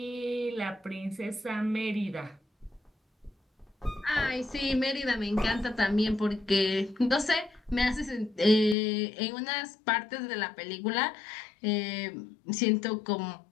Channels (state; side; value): drops out; right; at 8.8 s